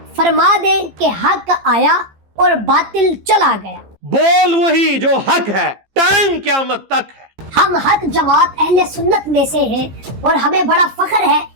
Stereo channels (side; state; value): left; late; 15 ms